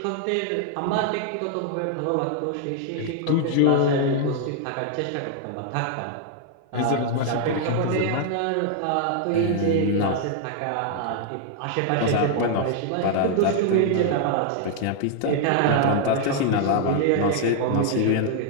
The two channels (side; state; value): both; different; correlation 0.00